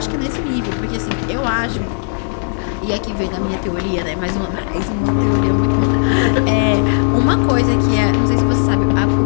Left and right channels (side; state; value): right; silent; digital silence